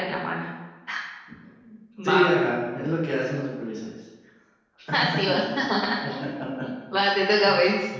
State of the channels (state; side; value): identical; both; correlation 1.00